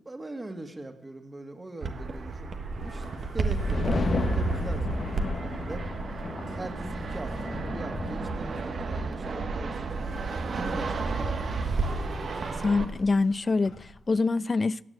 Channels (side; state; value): both; normal; correlation 0.84